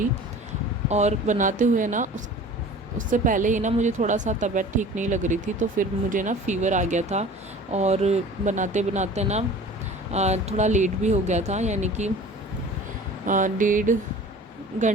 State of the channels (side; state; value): both; normal; correlation 0.43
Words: और बनाते हुए ना उससे पहले ही ना मुझे थोड़ा सा तबीयत ठीक नहीं लग रही थी, तो फिर मुझे ना फ़ीवर आ गया था और बनाते बनाते ना थोड़ा लेट भी हो गया था, यानी कि 1.5